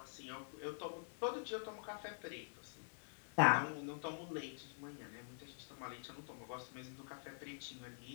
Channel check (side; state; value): right; silent; digital silence